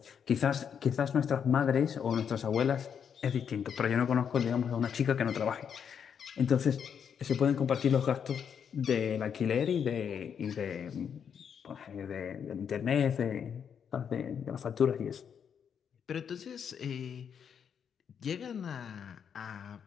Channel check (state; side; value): quieter; right; 7.6 dB